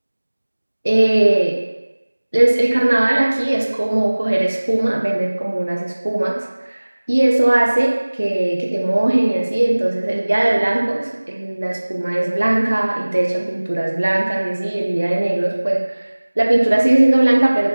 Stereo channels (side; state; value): both; inverted; correlation -1.00